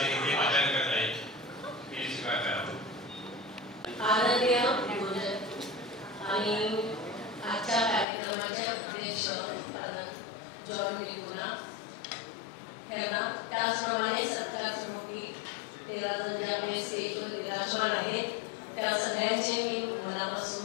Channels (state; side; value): drops out; right; at 8.1 s